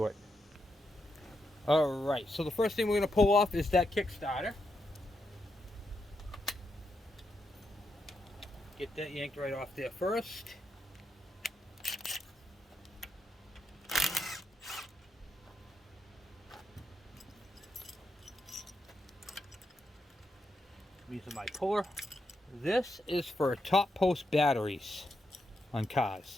it. Alright, so the first thing we're going to pull off is that kickstarter. Get that yanked right off there first. I'm using my puller. This is for top post batteries on cars.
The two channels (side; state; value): both; normal; correlation 0.83